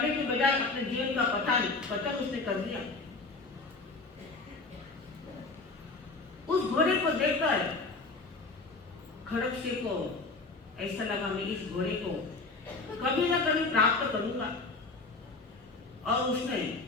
के बजाय अपने जीवन का पतन उसने कर दिया। उस घोड़े को देखकर खड़क सिंह को ऐसा लगा, मैं इस घोड़े को कभी ना कभी प्राप्त करूंगा, और उसने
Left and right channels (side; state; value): right; quieter; 3.7 dB